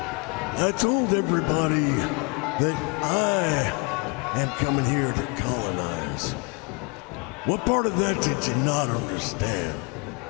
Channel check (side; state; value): right; quieter; 31.2 dB